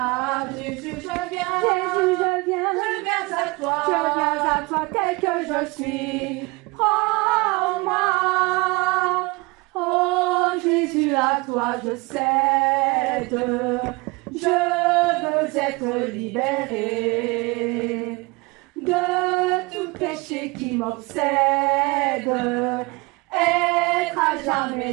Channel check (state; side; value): quieter; left; 25.7 dB